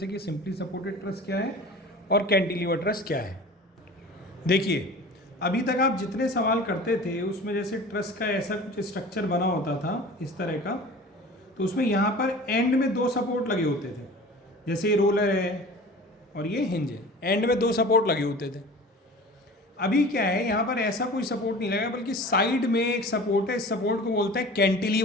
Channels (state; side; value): normal; both; correlation 0.40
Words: कि सिंपली सपोर्टेड ट्रस क्या है और कैंटिलीवर ट्रस क्या है। देखिए, अभी तक आप जितने सवाल करते थे उसमें जैसे ट्रस का ऐसा कुछ स्ट्रक्चर बना होता था इस तरह का, तो उसमें यहाँ पर एंड में दो सपोर्ट लगे होते थे। जैसे ये रोलर है और ये हिंज है, एंड में दो सपोर्ट लगे होते थे। अभी क्या है, यहाँ पर ऐसा कोई सपोर्ट नहीं लगा, बल्कि साइड में एक सपोर्ट है। इस सपोर्ट को बोलते हैं